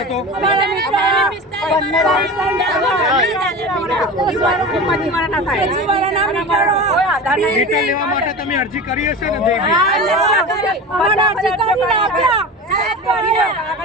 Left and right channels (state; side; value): normal; both; correlation 0.30